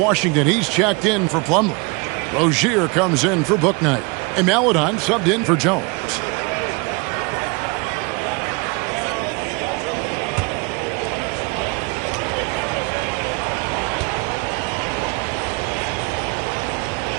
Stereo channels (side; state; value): left; quieter; 29.0 dB